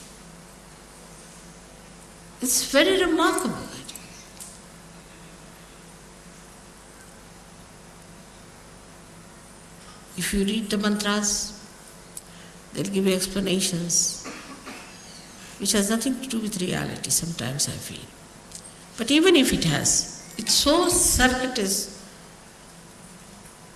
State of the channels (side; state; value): both; identical; correlation 1.00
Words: It's very remarkable. If you read the mantras, they'll give you explanations which has nothing to do with reality, sometimes I feel. But even if it has, it's so circuitous,